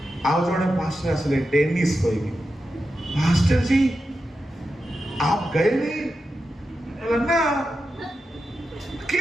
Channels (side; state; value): both; normal; correlation 0.90